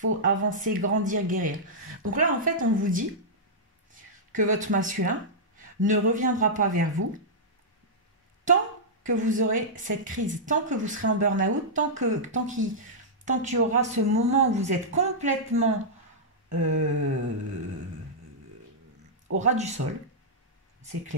avancer, grandir, guérir. Donc là, en fait, on vous dit que votre masculin ne reviendra pas vers vous tant que vous aurez cette crise, tant que vous serez en burn-out, tant qu'il y aura ce moment où vous êtes complètement au ras du sol, c'est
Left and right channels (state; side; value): normal; both; correlation -0.11